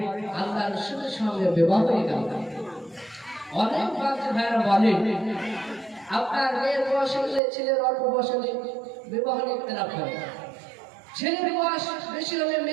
আল্লাহ রাসূলের সঙ্গে বিবাহ হয়ে গেল। অনেক বাপজি ভাইরা বলে আপনার মেয়ের বয়স হলে ছেলের অল্প বয়স হলে বিবাহ ইখতিলাফ করে, ছেলের বয়স বেশি হলে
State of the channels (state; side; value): drops out; left; at 7.4 s